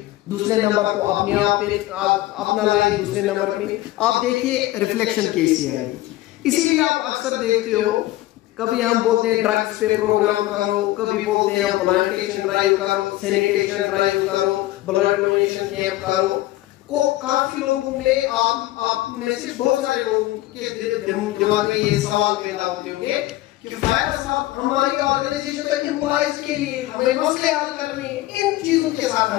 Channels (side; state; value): right; quieter; 16.7 dB